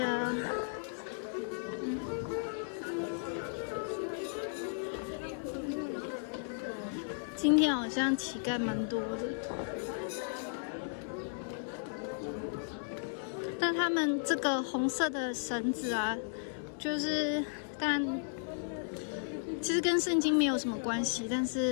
今天好像乞丐蛮多的，但他们这个红色的绳子啊，就是当然其实跟圣经没有什么关系，但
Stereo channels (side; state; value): right; silent; digital silence